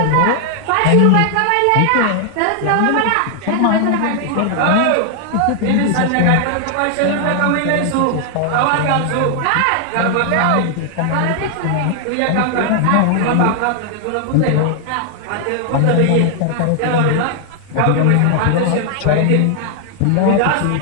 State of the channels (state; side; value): different; both; correlation 0.00